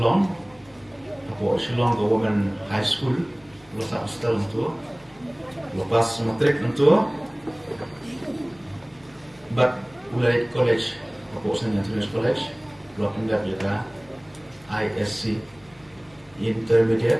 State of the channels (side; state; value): left; noise; hum, 28 dB below the sound